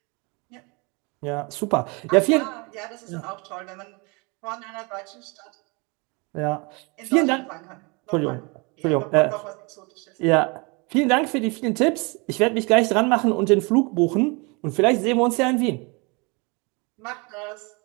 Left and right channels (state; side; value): quieter; left; 29.5 dB